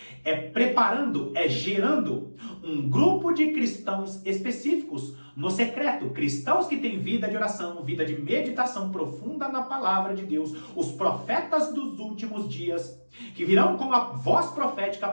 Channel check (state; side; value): inverted; both; correlation -1.00